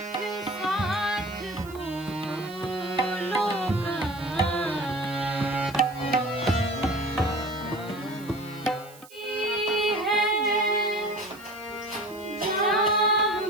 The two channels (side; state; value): right; noise; hiss, 22 dB below the sound